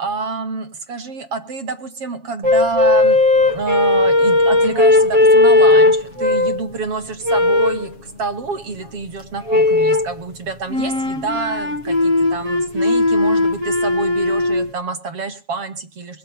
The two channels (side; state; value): left; late; 7.3 ms